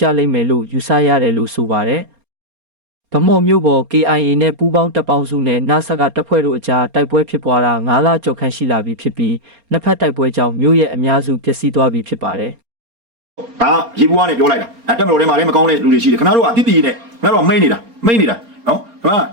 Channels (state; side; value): late; left; 4.3 ms